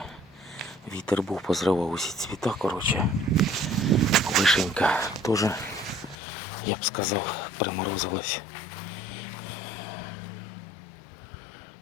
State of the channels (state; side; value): drops out; right; at 6.2 s